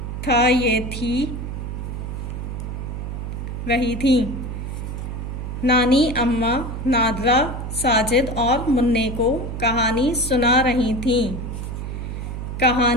था ये थी रही थी। नानी अम्मा नादरा, साजिद और मुन्ने को कहानी सुना रही थीं।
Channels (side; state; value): right; noise; hum, 6 dB below the sound